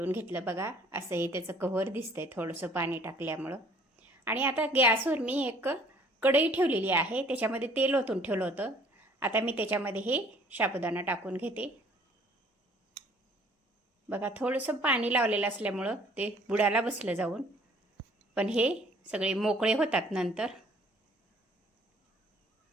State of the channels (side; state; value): both; normal; correlation 0.56